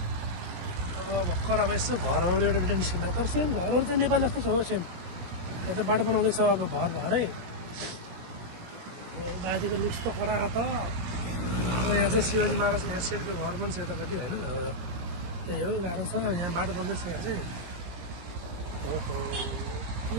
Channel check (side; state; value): left; late; 17 ms